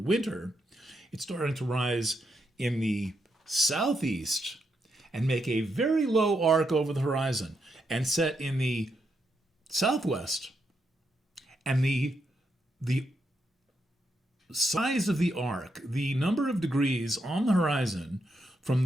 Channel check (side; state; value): both; normal; correlation 0.81